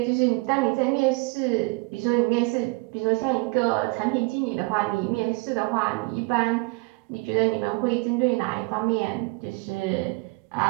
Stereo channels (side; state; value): left; quieter; 26.4 dB